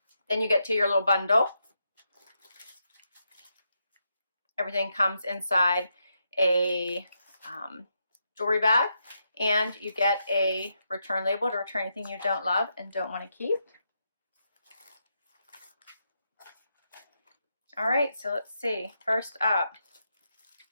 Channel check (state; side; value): inverted; both; correlation -0.83